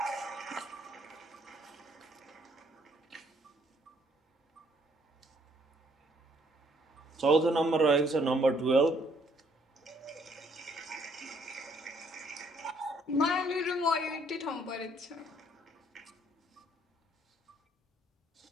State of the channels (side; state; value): both; normal; correlation 0.66